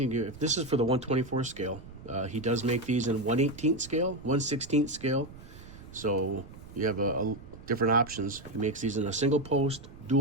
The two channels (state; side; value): noise; right; rumble, 17 dB below the sound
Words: if this is for the 124 scale, he does make these in 1/18 scale, 1/16 scale. So you have a different options. He makes these in a single post,